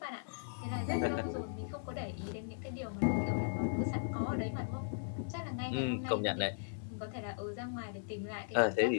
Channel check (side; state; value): right; silent; 53 dB below the other